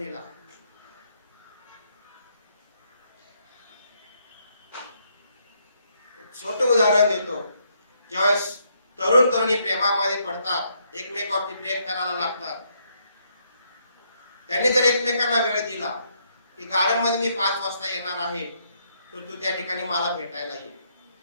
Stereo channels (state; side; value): inverted; both; correlation -0.74